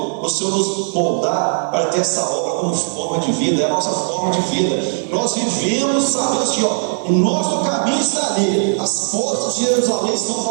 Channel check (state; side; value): silent; left; 67 dB below the other